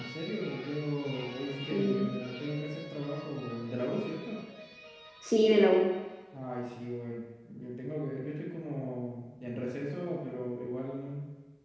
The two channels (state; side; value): identical; both; correlation 1.00